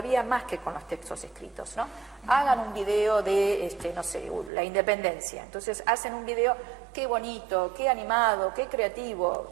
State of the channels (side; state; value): left; drops out; at 4.5 s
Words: más que con los textos escritos, ¿no? Hagan un video de, no sé, la independencia. Entonces hacen un video, qué bonito, qué animado, qué